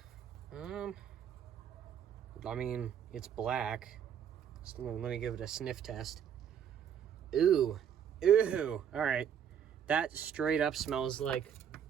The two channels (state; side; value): quieter; left; 8.6 dB